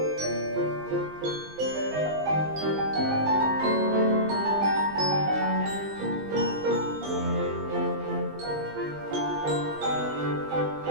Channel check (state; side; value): late; left; 20 ms